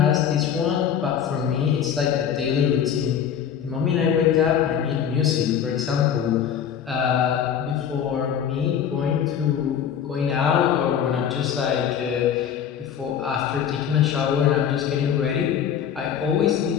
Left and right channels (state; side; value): quieter; right; 8.6 dB